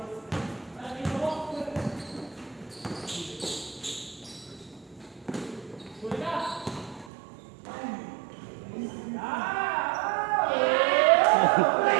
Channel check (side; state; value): left; drops out; at 7.1 s